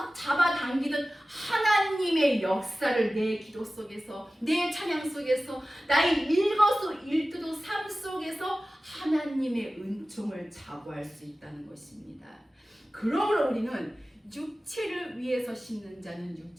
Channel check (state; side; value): normal; both; correlation 0.96